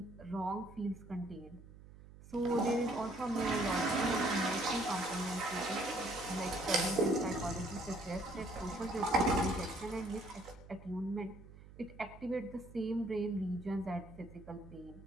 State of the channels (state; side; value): noise; right; hum, 18 dB below the sound